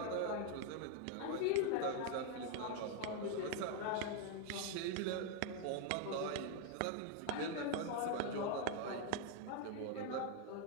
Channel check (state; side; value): different; both; correlation 0.01